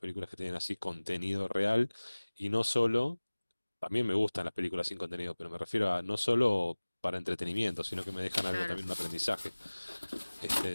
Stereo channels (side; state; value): both; inverted; correlation -1.00